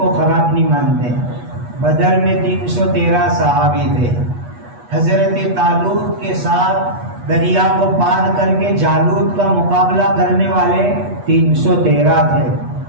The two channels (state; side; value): late; left; 8.3 ms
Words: خراب نہیں مانتے. بدر میں 313 صحابی تھے. حضرت طالوت کے ساتھ دریا کو پار کر کے جالوت کا مقابلہ کرنے والے 313 تھے.